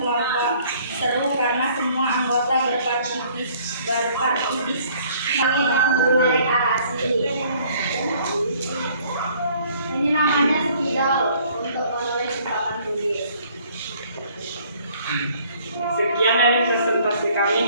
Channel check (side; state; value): both; inverted; correlation -0.59